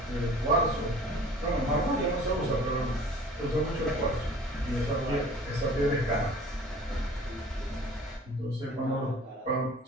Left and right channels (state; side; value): normal; both; correlation 0.46